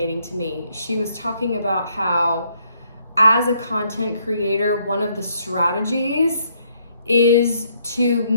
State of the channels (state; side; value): inverted; both; correlation -0.71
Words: to me. She was talking about how, as a content creator, one of the strategies is to